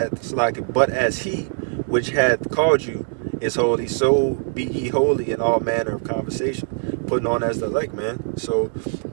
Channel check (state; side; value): silent; left; digital silence